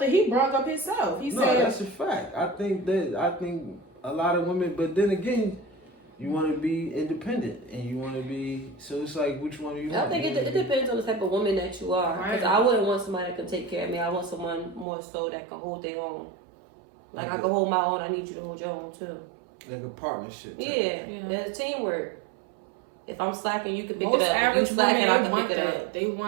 he brought up himself. He said that's a fact. I think a lot of women, but then again, you want to be independent and you want to be. So it's like, which one do you want? I think it depends on the type of woman that you are. Because I wouldn't want somebody that can take care of me. I want someone more so that can hold their own. Like I can hold my own. I need you to hold your own too. Like a partnership. Yeah. There's teamwork. If I'm slacking, you can pick most it up. average women, I can pick it up. They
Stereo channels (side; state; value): left; drops out; at 14.9 s